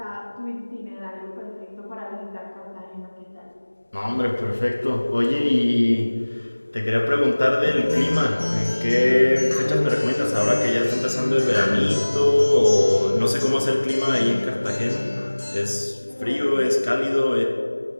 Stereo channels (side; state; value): both; inverted; correlation -1.00